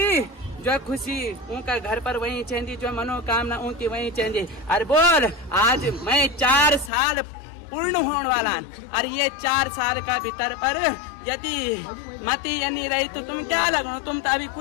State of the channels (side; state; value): right; drops out; at 6.9 s